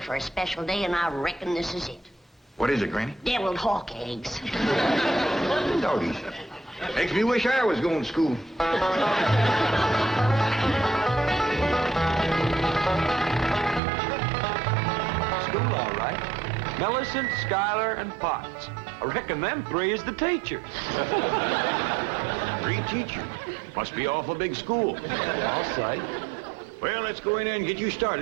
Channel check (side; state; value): left; drops out; at 13.8 s